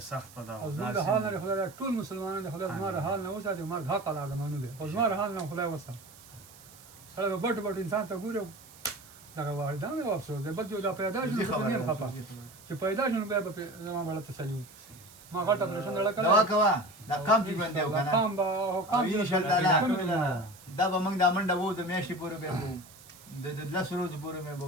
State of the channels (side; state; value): right; noise; hiss, 21 dB below the sound